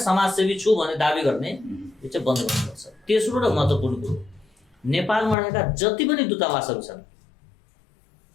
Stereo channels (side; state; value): right; drops out; at 5.4 s